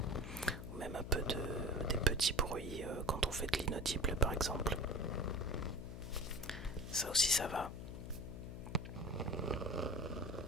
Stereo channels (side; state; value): left; noise; hum, 8 dB below the sound